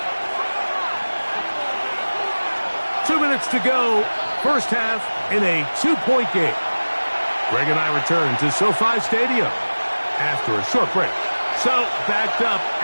Two minutes to go. First half in a 2-point game. Greg and I return to SoFi Stadium after a short break. So, backed up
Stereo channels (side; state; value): both; inverted; correlation -1.00